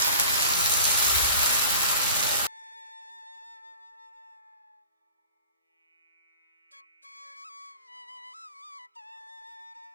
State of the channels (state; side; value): inverted; both; correlation -0.41